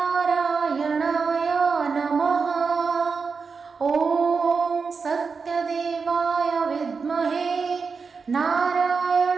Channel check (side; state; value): left; quieter; 5.1 dB